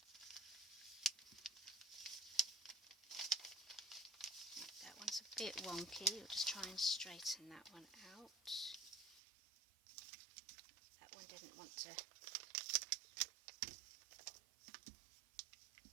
That one's a bit wonky. We'll just try and straighten that one out. That one didn't want to.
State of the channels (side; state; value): left; drops out; at 9.2 s